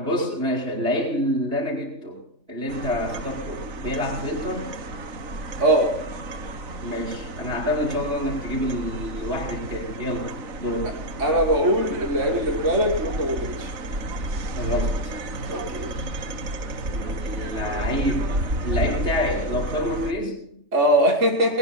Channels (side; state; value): left; late; 3.3 ms